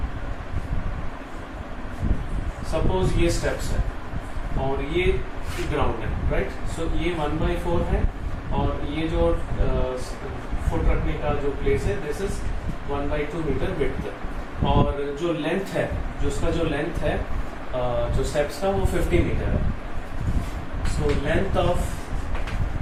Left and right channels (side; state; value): both; identical; correlation 1.00